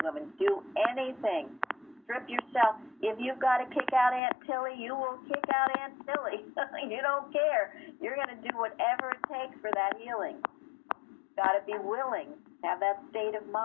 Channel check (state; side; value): drops out; right; at 4.2 s